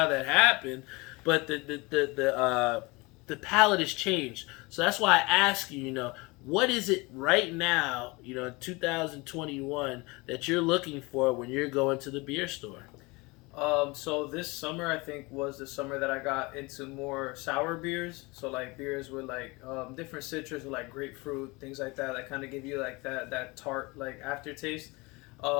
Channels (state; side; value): quieter; right; 25.1 dB